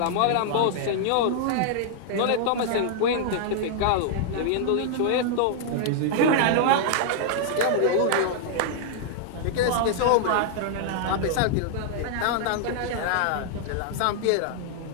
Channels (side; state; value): both; different; correlation -0.01